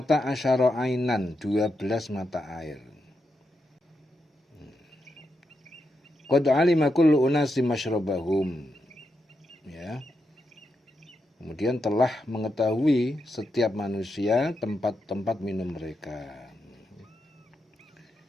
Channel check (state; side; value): normal; both; correlation 0.85